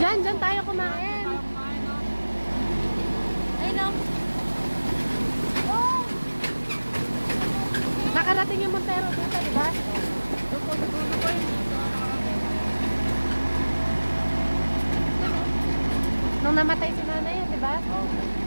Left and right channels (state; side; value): inverted; both; correlation -1.00